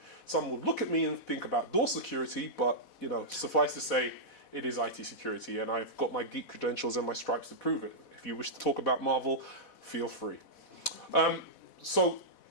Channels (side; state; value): right; late; 4.1 ms